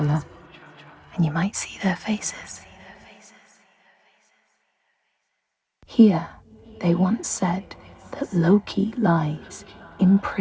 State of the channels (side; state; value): both; identical; correlation 1.00